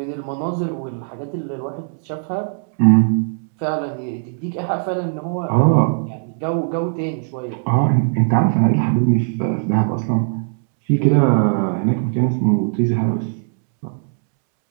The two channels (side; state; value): left; silent; 66 dB below the other